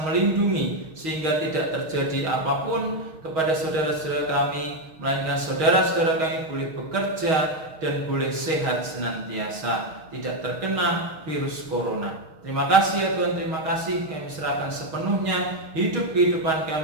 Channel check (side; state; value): left; late; 6.4 ms